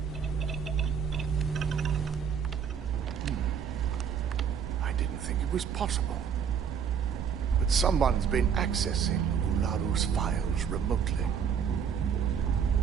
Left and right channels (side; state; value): left; quieter; 7.4 dB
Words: was possible. But someone's been accessing Ularu's files remotely.